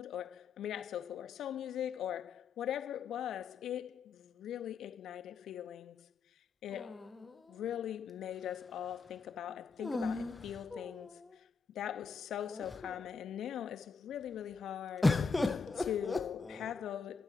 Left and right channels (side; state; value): right; quieter; 5.4 dB